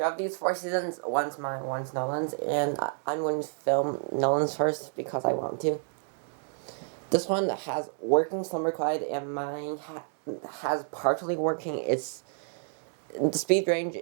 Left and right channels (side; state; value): left; silent; digital silence